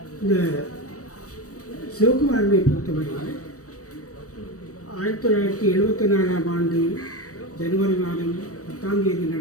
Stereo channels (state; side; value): late; right; 0.66 ms